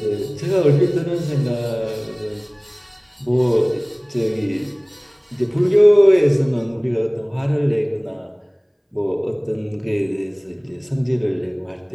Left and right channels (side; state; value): both; identical; correlation 1.00